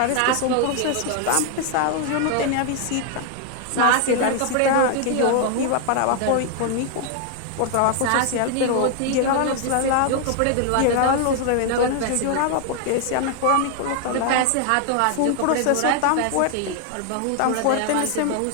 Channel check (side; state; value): both; different; correlation 0.00